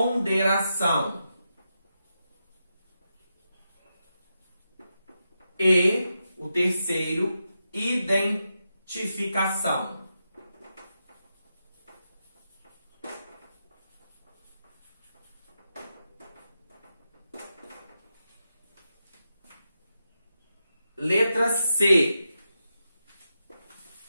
E o terceiro, identificação. Letra C.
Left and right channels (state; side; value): inverted; both; correlation -0.87